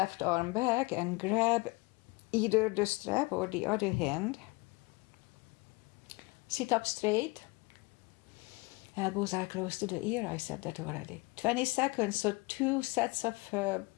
arm back and grab either the strap or the other hand. Sit up straight. Elbows are close to the ear. I said that already. 20 seconds, so 2 sets of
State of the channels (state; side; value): quieter; right; 25.7 dB